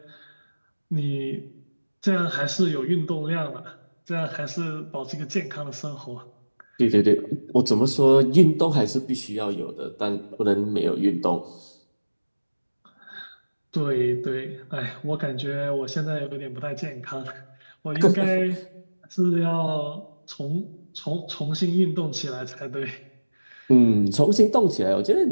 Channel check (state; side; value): inverted; both; correlation -1.00